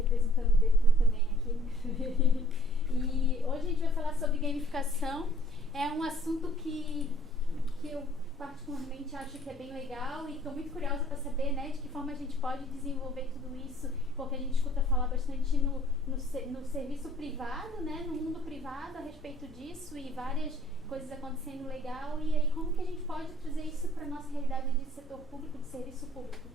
o DETRAN também aqui. E hoje a gente vai falar sobre gamificação. É um assunto que eu particularmente acho que é bem legal e estou muito curiosa para saber, né, de que forma a gente pode desenvolver tudo isso, porque a gente escuta falar bastante no serviço privado, né, no mundo privado a respeito disso e várias coisas acontecendo legal, e aí como que a gente pode trazer isso para a nossa realidade de setor público, de serviço público.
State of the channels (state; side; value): normal; both; correlation 0.57